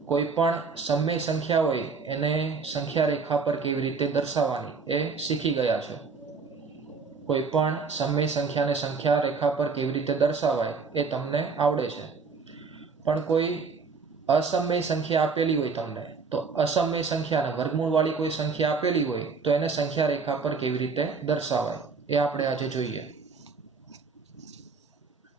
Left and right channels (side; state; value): left; quieter; 4.9 dB